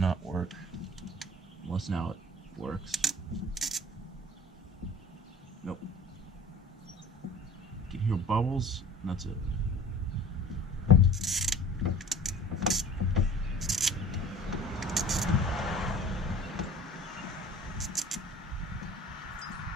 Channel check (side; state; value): both; normal; correlation 0.44